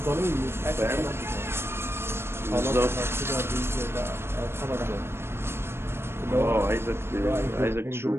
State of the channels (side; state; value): left; late; 0.12 ms